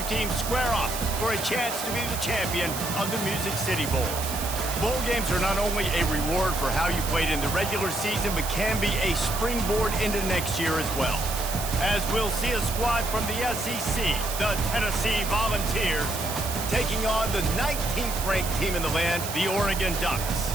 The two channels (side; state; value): right; noise; hiss, 6 dB below the sound